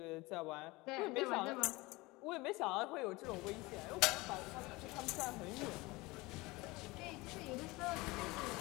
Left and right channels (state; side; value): quieter; right; 22.4 dB